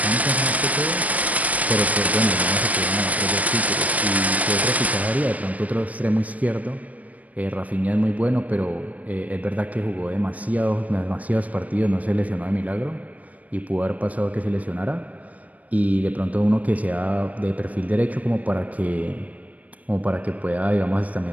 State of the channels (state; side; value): late; left; 0.072 ms